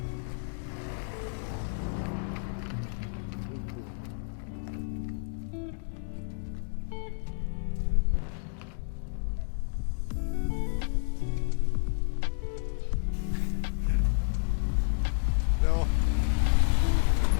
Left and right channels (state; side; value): silent; right; digital silence